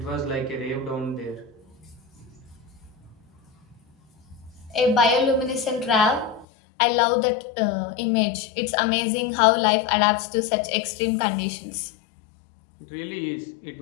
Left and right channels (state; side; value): drops out; right; at 6.5 s